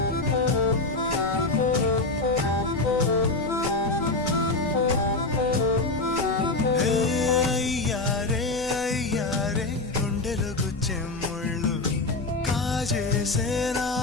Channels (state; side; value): quieter; right; 3.3 dB